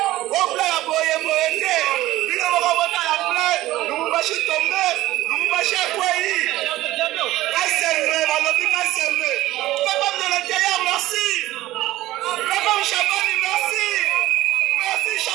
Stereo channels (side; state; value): left; quieter; 16.3 dB